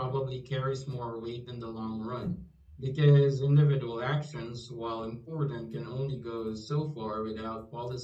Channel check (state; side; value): identical; both; correlation 1.00